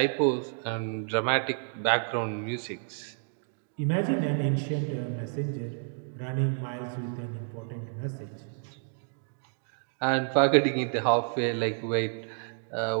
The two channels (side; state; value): left; silent; digital silence